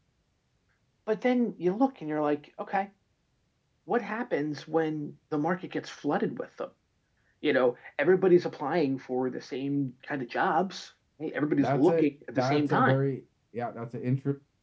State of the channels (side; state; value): both; identical; correlation 1.00